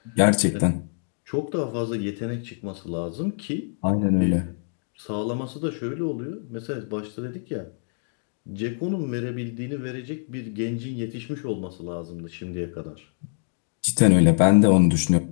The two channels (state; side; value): silent; right; digital silence